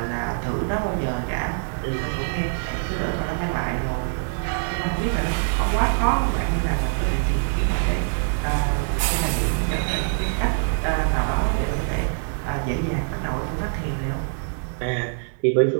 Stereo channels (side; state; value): left; silent; 63 dB below the other